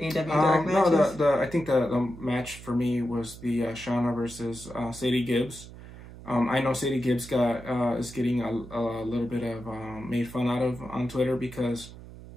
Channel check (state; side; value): noise; right; hum, 16 dB below the sound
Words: AEW Dark matches? No, I think the match for me was the Shauna versus Sadie Gibbs. I know Sadie Gibbs is getting a little bit of made fun out of on Twitter because